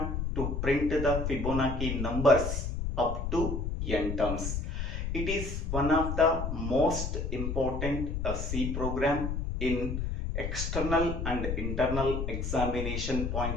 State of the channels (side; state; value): left; noise; rumble, 2 dB below the sound